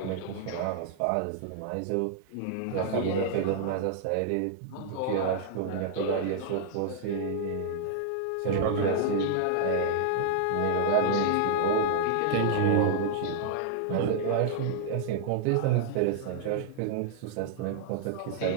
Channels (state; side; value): different; both; correlation -0.01